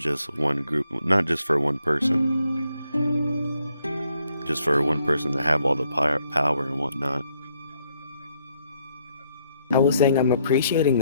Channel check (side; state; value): both; inverted; correlation -0.73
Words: one group, not just for one person. Just for one person to have all the power and whatnot. I was saying I'm appreciating